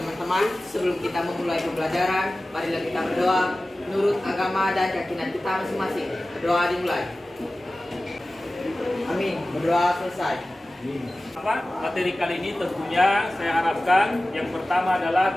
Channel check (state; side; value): normal; both; correlation 0.96